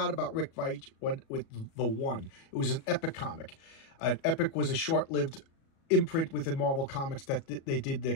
about Rick Veitch with The One. It was an Epic comic. Epic was a short-lived imprint within Marvel Comics that they did their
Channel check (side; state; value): right; late; 37 ms